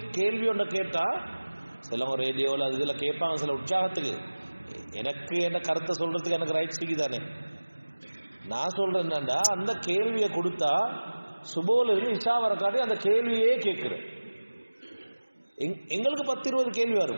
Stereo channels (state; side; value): inverted; both; correlation -1.00